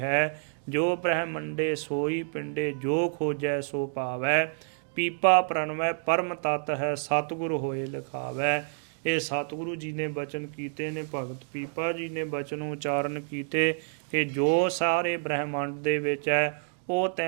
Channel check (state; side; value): silent; left; digital silence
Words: ਜੋ ਬ੍ਰਹਮੰਡੇ ਸੋਈ ਪਿੰਡੇ, ਜੋ ਖੋਜੈ ਸੋ ਪਾਵੈ। ਪੀਪਾ ਪ੍ਰਣਵੈ ਪਰਮ ਤਤ ਹੈ, ਸਤਿਗੁਰ ਹੋਏ ਲਿਖਾਵੈ। ਇਹ ਸਤਿਗੁਰੂ ਜੀ ਨੇ ਬਚਨ ਕੀਤੇ ਨੇ, ਭਗਤ ਪੀਪਾ ਜੀ ਨੇ ਬਚਨ ਉਚਾਰਨ ਕੀਤੇ ਕਿ ਜੋ ਸਾਰੇ ਬ੍ਰਹਮੰਡ ਦੇ ਵਿੱਚ ਹੈ ਉਹ